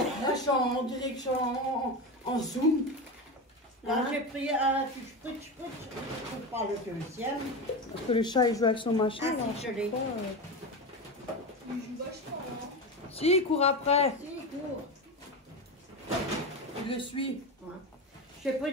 je suis en direction en zoom. Là, Hein? j'ai pris un spritz, pour pas le deuxième. Parce que le chat il joue avec son machin. Ah, là. si, je l'ai. Il joue vachement, hein. Si, il court après. Si, cours. Il le suit. Ouais. J'ai pris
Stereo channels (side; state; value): both; normal; correlation 0.21